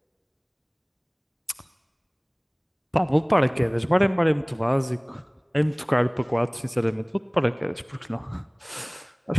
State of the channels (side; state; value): both; identical; correlation 1.00